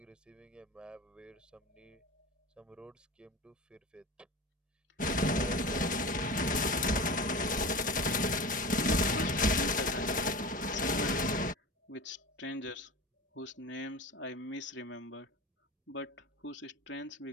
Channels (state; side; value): normal; both; correlation 0.31